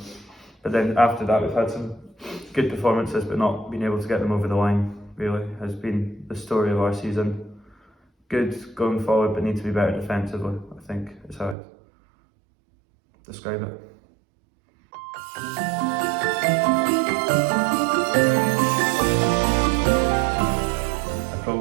but then after that we've had some good performances, but not being able to get them over the line really has been the story of our season. Good going forward, but need to be better defensively, I think is how I'd describe it.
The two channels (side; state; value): left; drops out; at 11.6 s